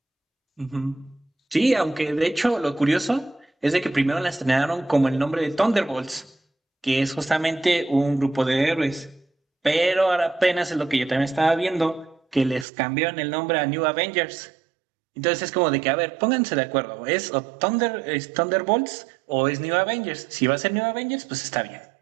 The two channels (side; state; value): left; drops out; at 12.7 s